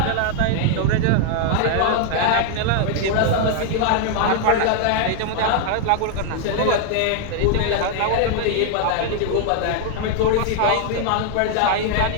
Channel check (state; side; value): different; both; correlation 0.00